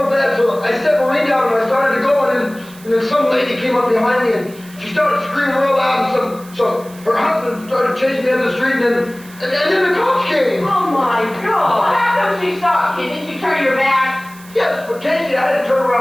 bad, so I set Maureen down and I started to go and then some lady came up behind me and she started screaming real loud and so her husband started chasing me down the street and then the cops came. Oh my God! Well, how come she stopped you? Didn't you turn your back? Yes, but Casey, I had to turn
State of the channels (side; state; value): right; noise; hiss, 22 dB below the sound